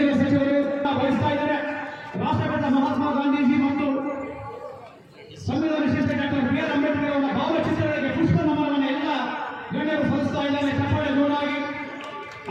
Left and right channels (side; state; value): both; identical; correlation 1.00